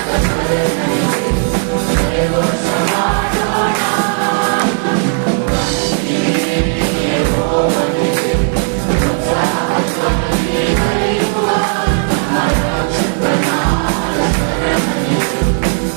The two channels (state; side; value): silent; left; 61 dB below the other